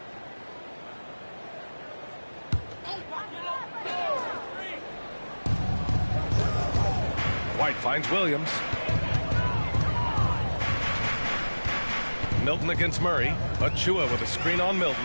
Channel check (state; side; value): inverted; both; correlation -1.00